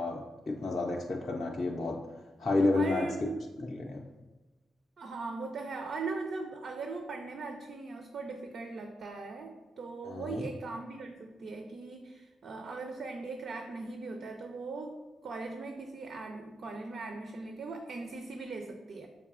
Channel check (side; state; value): both; normal; correlation 0.84